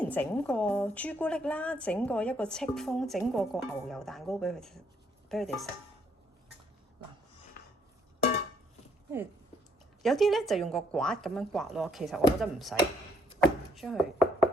整過朱古力啦，整過一個戚風，整過個牛油蛋糕畀佢哋食。嗱，有啲咧就用個刮咁樣刮咯，其實我覺得唔使，將佢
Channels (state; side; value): normal; both; correlation 0.69